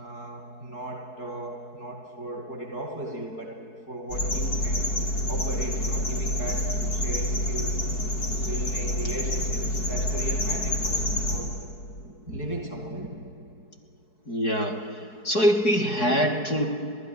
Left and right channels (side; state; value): right; late; 4.7 ms